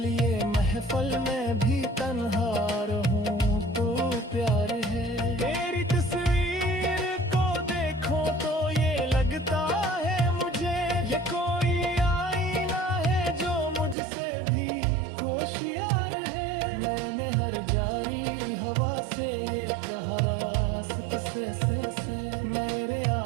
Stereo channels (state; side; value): drops out; left; at 14.0 s